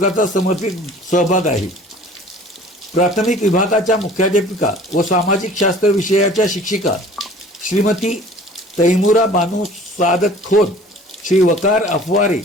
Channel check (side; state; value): both; normal; correlation 0.48